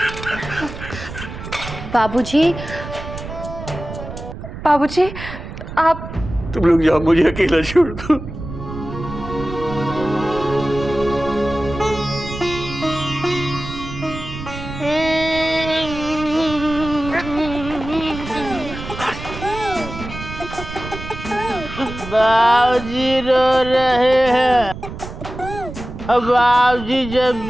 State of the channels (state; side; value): noise; right; rumble, 10 dB below the sound